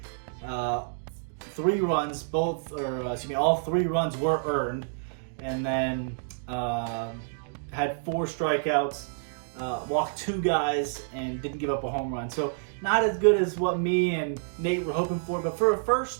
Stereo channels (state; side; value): silent; left; digital silence